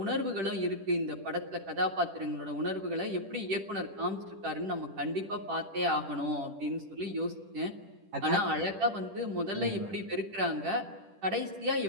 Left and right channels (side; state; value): left; late; 10 ms